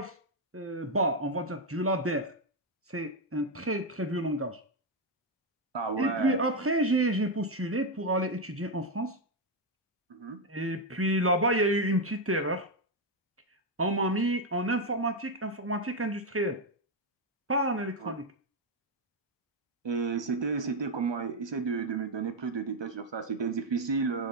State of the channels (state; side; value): normal; both; correlation 0.04